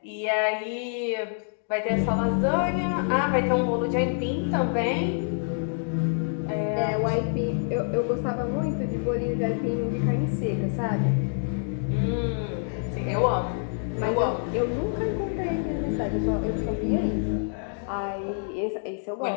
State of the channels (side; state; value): right; silent; digital silence